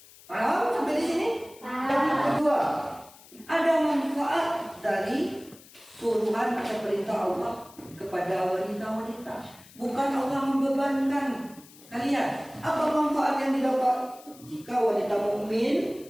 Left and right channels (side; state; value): left; noise; hiss, 22 dB below the sound